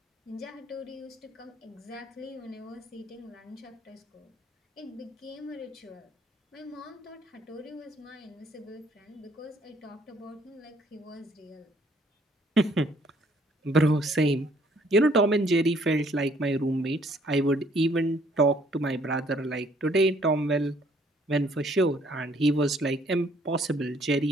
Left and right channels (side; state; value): both; normal; correlation 0.63